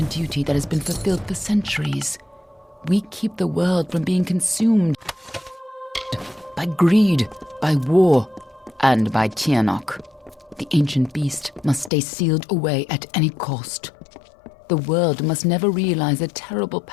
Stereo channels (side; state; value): right; drops out; at 11.9 s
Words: duty that has been fulfilled for centuries. We keep the world from being consumed by greed, by war, and by Tirnoch. The ancient beast must stay sealed away at any cost. The world must never realize the terrible